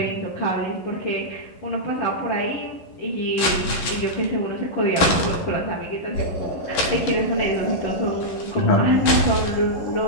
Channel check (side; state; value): right; late; 11 ms